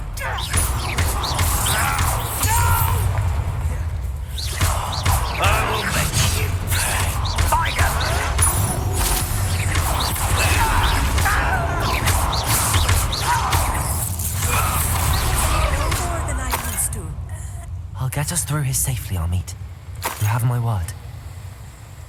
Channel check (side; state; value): both; identical; correlation 1.00